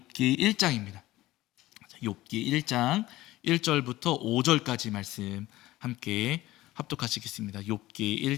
1장입니다. 욥기 1장 1절부터 5절까지 말씀 함께 합독하시겠습니다. 욥기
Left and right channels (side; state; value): right; quieter; 17.0 dB